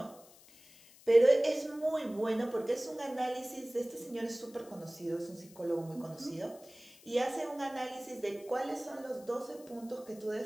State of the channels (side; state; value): left; noise; hiss, 23 dB below the sound